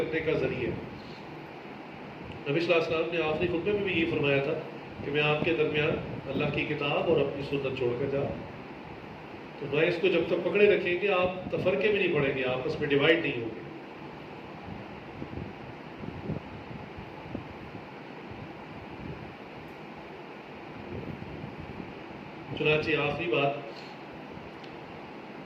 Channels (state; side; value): identical; both; correlation 1.00